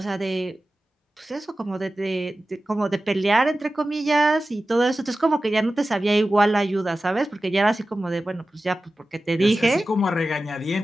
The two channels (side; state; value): both; normal; correlation 0.95